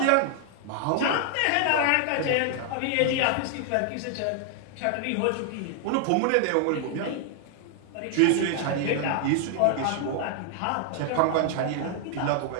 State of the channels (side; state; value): both; different; correlation 0.00